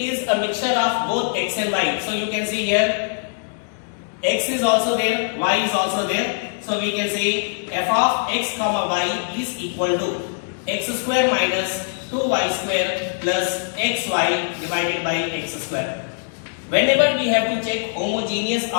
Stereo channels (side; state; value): right; silent; digital silence